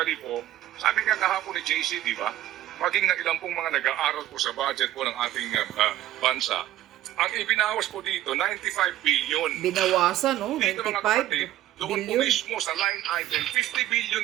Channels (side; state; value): left; quieter; 13.7 dB